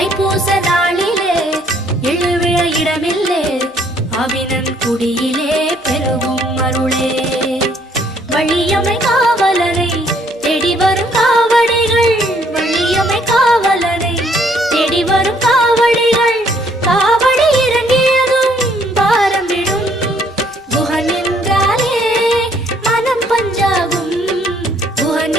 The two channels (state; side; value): normal; both; correlation 0.65